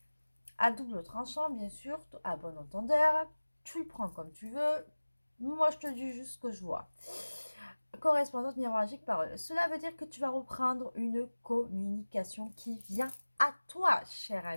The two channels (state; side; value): inverted; both; correlation -1.00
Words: à double tranchant, bien sûr, à bon entendeur. Tu le prends comme tu veux. Moi, je te dis juste ce que je vois. Correspondance, miroir magique, parole. Cela veut dire que tu vas reprendre une communication qui vient à toi, cher